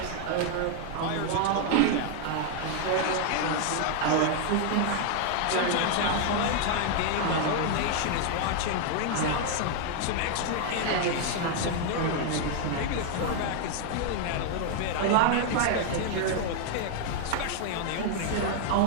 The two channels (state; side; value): different; both; correlation 0.00